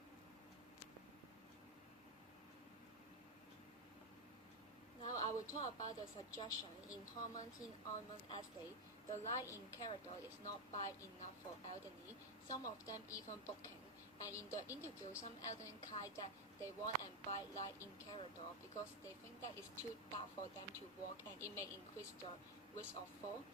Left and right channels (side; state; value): both; normal; correlation 0.05